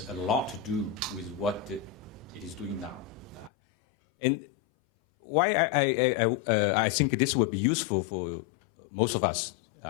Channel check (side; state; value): right; drops out; at 3.5 s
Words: a lot to do with what it is doing now. And why I think this would be useful for most of us